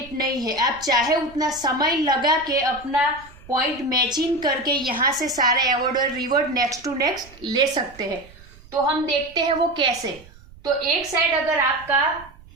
नहीं है। आप चाहे उतना समय लगा के अपना पॉइंट मैचिंग करके यहाँ से सारे अवार्ड और रिवॉर्ड नेक्स्ट टू नेक्स्ट ले सकते हैं। तो हम देखते हैं वो कैसे। तो एक साइड अगर आपका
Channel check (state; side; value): noise; right; rumble, 22 dB below the sound